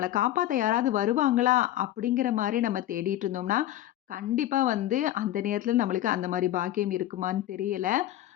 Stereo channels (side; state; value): right; quieter; 13.4 dB